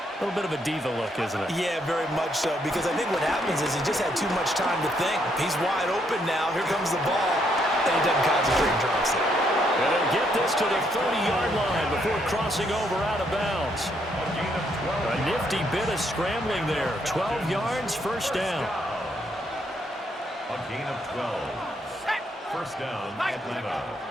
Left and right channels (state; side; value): normal; both; correlation 0.73